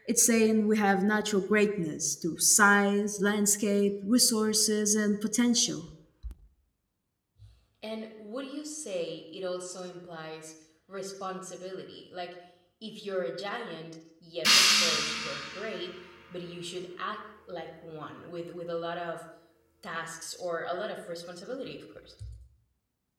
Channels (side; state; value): both; identical; correlation 1.00